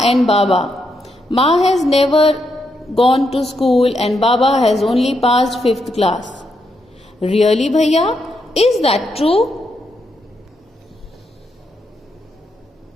Baba. Ma has never gone to school and Baba has only passed 5th class. Really, Bhaiya? Is that true?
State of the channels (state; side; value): normal; both; correlation 0.81